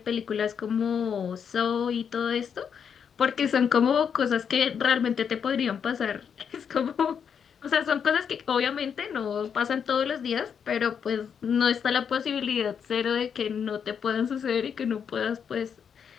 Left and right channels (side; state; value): right; quieter; 7.3 dB